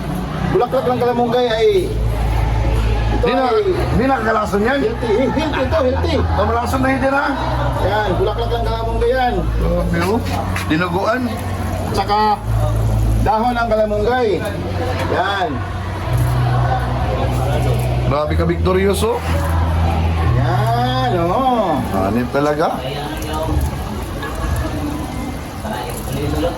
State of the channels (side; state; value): both; identical; correlation 1.00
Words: Bulaklak ng kalamunggay ay Hindi nakakalason yan. healthy. Kamalason na hindi na. Yan, bulaklak ng kalamunggay yan. Pero, dinuguan. Tsaka dahon ng kalamunggay. Yan. Grabe ka, Victorioso. Yan, oo. Hanip talaga.